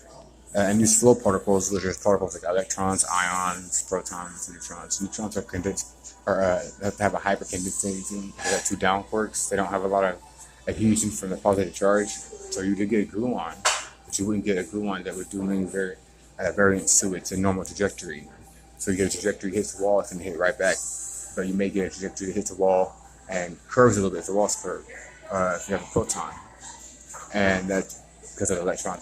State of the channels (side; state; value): both; identical; correlation 1.00